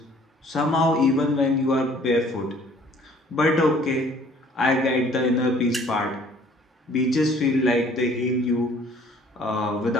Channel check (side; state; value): both; normal; correlation 0.56